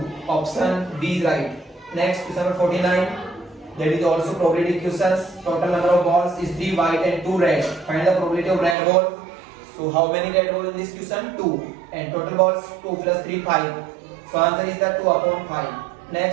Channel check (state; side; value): drops out; left; at 8.8 s